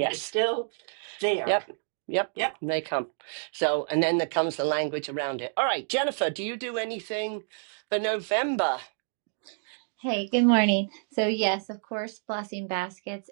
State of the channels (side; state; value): left; silent; digital silence